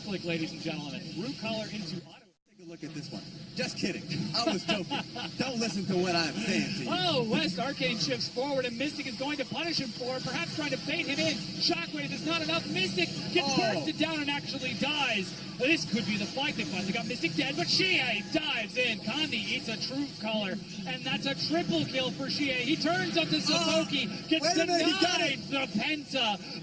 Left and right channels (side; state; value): both; identical; correlation 1.00